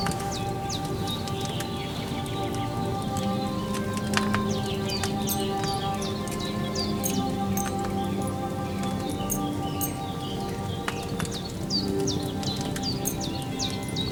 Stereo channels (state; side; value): identical; both; correlation 1.00